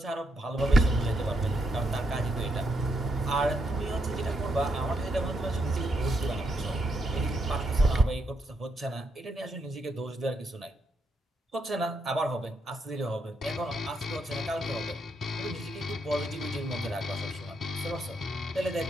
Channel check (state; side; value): normal; both; correlation 0.79